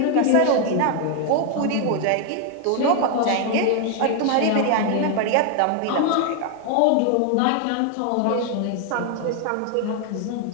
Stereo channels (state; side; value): different; both; correlation 0.00